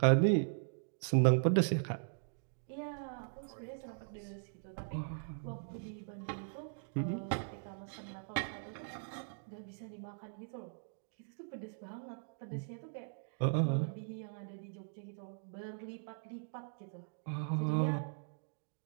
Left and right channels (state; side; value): silent; left; digital silence